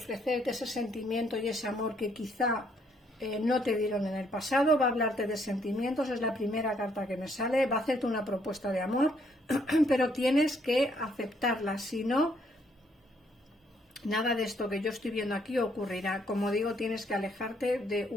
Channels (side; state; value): both; normal; correlation 0.69